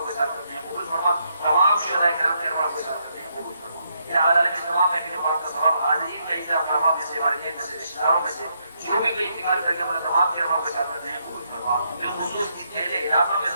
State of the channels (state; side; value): inverted; both; correlation -0.77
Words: کے ساتھ رکھتے ہیں قبول فرما تمام شہداء کرام کے روح کے ساتھ رکھتے ہیں قبول فرما العالمین تمام محفل پاک کا ثواب حاضرین کا اعزاز کرما میں سے والدین میں سے رشتہ داروں میں سے جو بھی کوئی انتقال کر گیا ہمارے تمام کے روح کے ساتھ رکھتے ہیں قبول فرما بالخصوص اس پہلے علاقوں میں